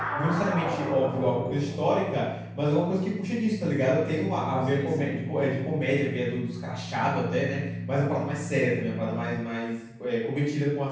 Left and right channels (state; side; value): identical; both; correlation 1.00